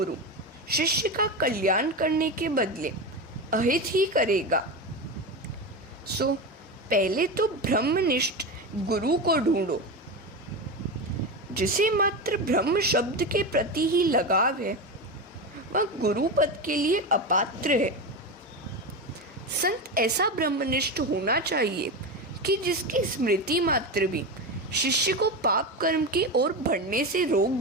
शिष्य का कल्याण करने के बदले अहित ही करेगा। सो पहले तो ब्रह्मनिष्ठ गुरु को ढूंढो। जिसे मात्र ब्रह्म शब्द के प्रति ही लगाव है वह गुरु पद के लिए अपात्र है। संत ऐसा ब्रह्मनिष्ठ होना चाहिए कि जिसकी स्मृति मात्र भी शिष्य को पाप कर्म की ओर बढ़ने से रोक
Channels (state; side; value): normal; both; correlation 0.19